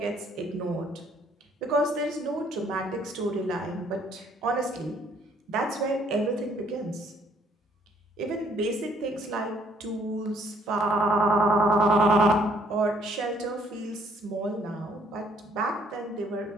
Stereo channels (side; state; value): both; normal; correlation 0.63